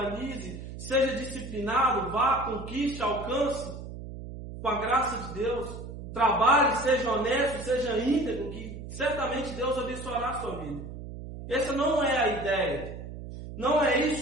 seja disciplinado, vá, conquiste, alcance, com a graça de Deus. Trabalhe, seja honesto, seja íntegro, que certamente Deus abençoará a sua vida. Essa não é a ideia. Não é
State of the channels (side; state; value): right; noise; hum, 10 dB below the sound